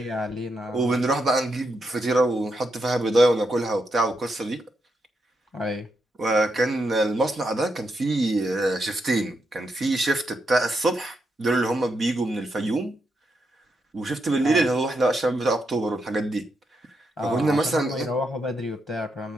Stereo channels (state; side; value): normal; both; correlation 0.82